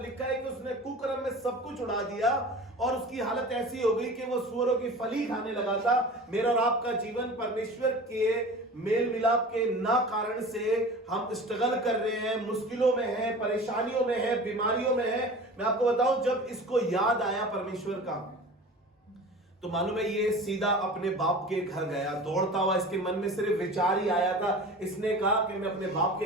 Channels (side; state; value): both; normal; correlation 0.38